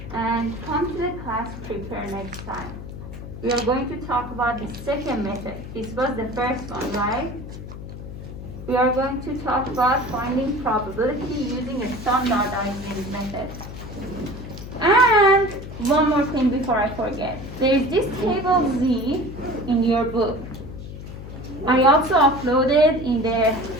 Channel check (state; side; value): noise; left; hum, 11 dB below the sound